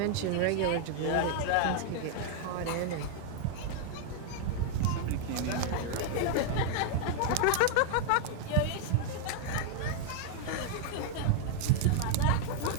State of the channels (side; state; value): both; different; correlation 0.00